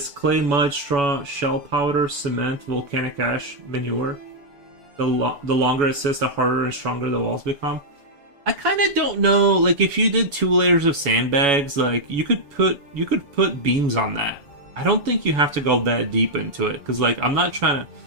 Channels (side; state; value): left; late; 7.1 ms